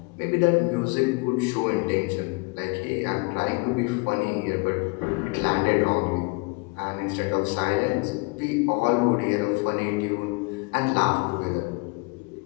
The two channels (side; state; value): right; quieter; 29.2 dB